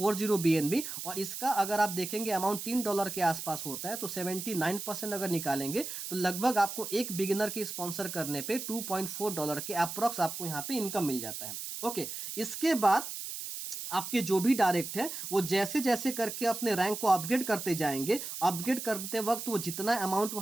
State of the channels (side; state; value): right; noise; hiss, 7 dB below the sound